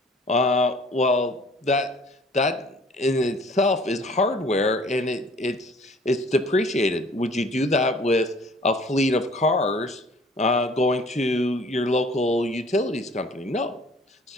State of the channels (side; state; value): both; normal; correlation 0.52